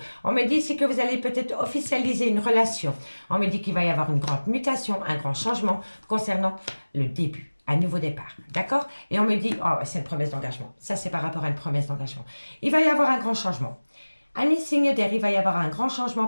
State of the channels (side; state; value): both; inverted; correlation -1.00